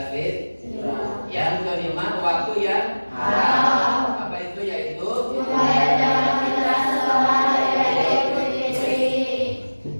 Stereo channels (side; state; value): both; inverted; correlation -1.00